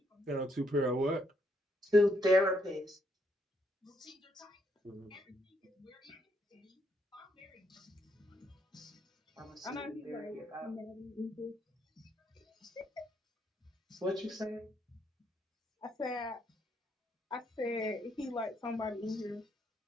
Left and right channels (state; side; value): normal; both; correlation 0.74